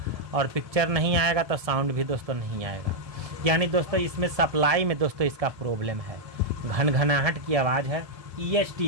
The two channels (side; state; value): left; late; 1.7 ms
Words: और पिक्चर नहीं आएगा तो साउंड भी दोस्तों नहीं आएगा। यानी दोस्तों इसमें सप्लाई में दोस्तों इसका प्रॉब्लम है, घनघनाहट की आवाज़ है।